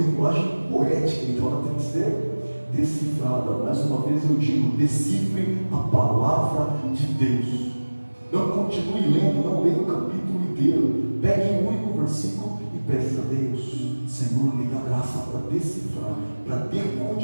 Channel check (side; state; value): both; inverted; correlation -1.00